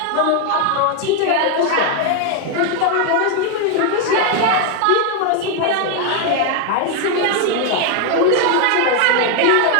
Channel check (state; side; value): different; both; correlation 0.01